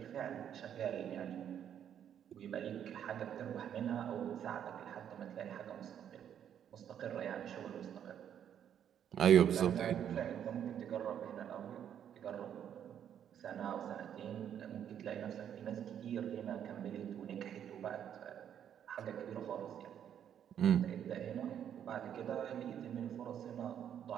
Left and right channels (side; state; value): left; quieter; 9.3 dB